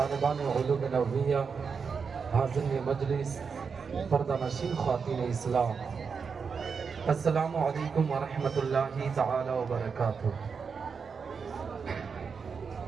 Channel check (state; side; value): quieter; left; 5.7 dB